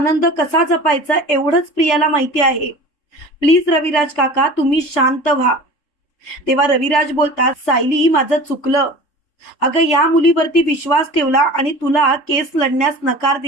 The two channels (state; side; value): late; right; 3.4 ms